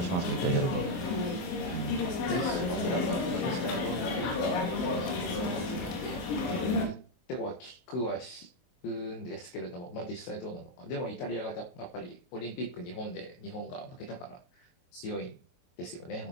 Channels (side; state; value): right; late; 24 ms